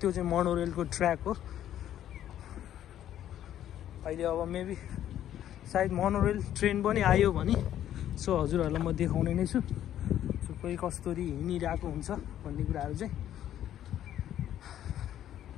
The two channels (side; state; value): right; quieter; 11.4 dB